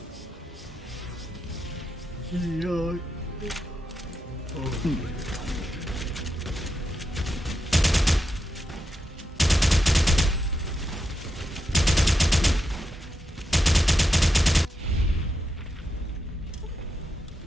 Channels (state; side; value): normal; both; correlation 0.86